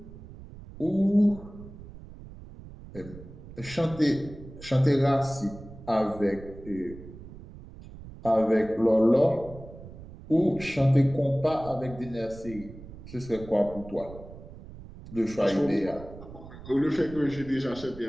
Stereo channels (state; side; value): noise; right; rumble, 16 dB below the sound